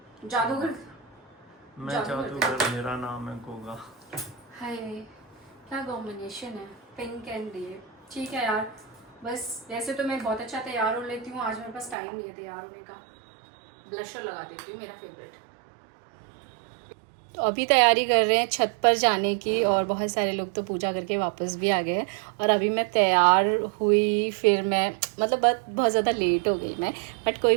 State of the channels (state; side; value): drops out; left; at 12.0 s